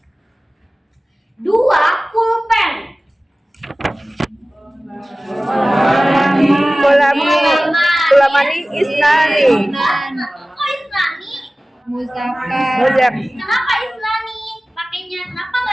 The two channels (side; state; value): both; normal; correlation 0.97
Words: 2 kul Isnani. Kok Isnani? Muzakkar. Muzak. Kenapa Isnani? Pakainya kenapa